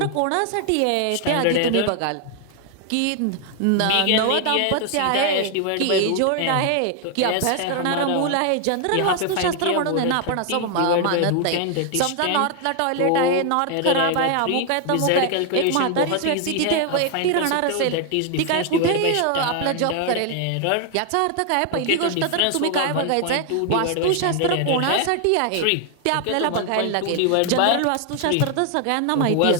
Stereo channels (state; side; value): different; both; correlation 0.00